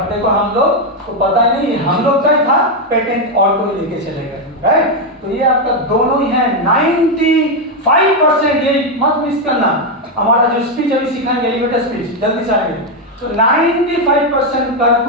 देखो हम लोग को पता ही नहीं, हम लोग का ही था, पेटेंट और कोई लेके चले गए, राइट। तो ये आपका दोनों ही है 95%। ये मत मिस करना, हमारा जो स्पीच अभी सीखाएंगे एलिवेटर स्पीच, जल्दी से आएंगे। तो 95%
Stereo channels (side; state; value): both; normal; correlation 0.04